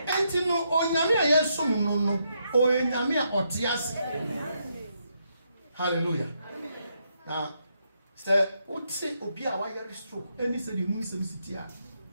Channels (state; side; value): inverted; both; correlation -0.79